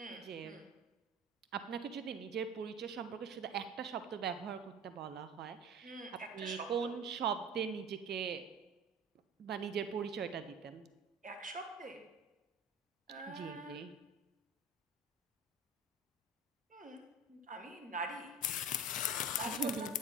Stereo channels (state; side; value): normal; both; correlation 0.37